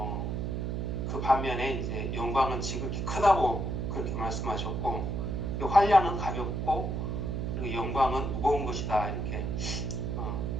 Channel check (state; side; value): noise; right; hum, 1 dB below the sound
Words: 그 반면에 이제 영광은 지극히 크다고 그렇게 말씀하셨고, 환난은 가볍고 그리고 영광은 무거운 것이다 이렇게